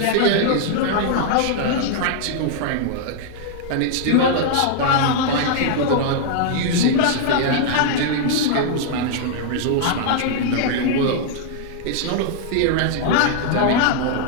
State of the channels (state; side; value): different; both; correlation -0.01